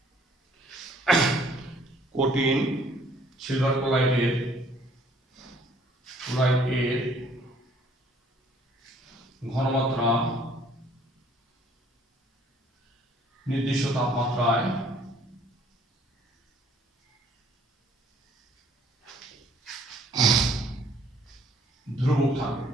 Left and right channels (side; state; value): both; normal; correlation 0.60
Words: সিলভার ক্লোরাইডের ঘনমাত্রা নির্দিষ্ট তাপমাত্রায় ধ্রুবক থাকে।